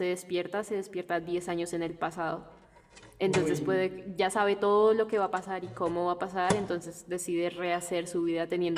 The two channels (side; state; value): both; identical; correlation 1.00